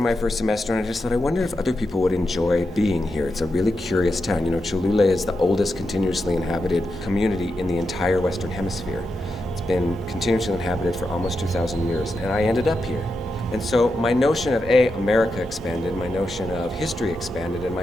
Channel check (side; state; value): both; normal; correlation 0.87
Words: my first semester, and I just thought, I wonder if other people would enjoy being here. It's a really curious town. You know, Cholula is the oldest continuously inhabited community in the entire Western Hemisphere. It's been continuously inhabited for almost 2,000 years, and I ended up here. And so my notion of America expanded, my notion of history expanded, and